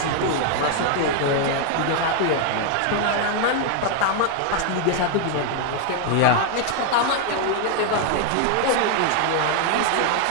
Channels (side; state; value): both; different; correlation 0.00